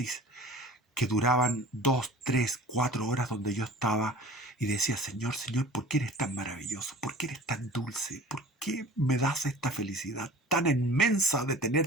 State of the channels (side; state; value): both; normal; correlation 0.42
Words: que duraban 2, 3, 4 horas, donde yo estaba y decía, Señor, ¿por qué eres tan maravilloso? ¿Por qué eres tan dulce? ¿Por qué me das esta felicidad tan inmensa de